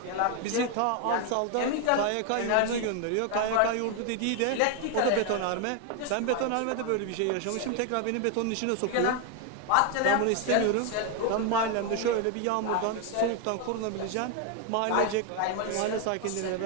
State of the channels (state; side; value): different; both; correlation 0.01